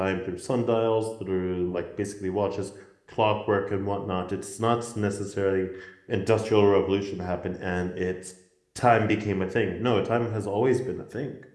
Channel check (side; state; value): both; identical; correlation 1.00